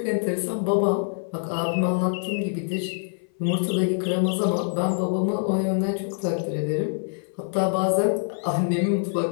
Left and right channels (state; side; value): silent; right; 58 dB below the other